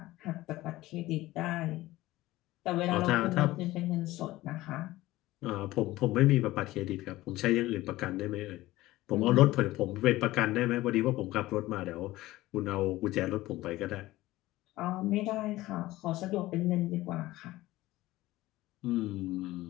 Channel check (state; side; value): quieter; right; 17.4 dB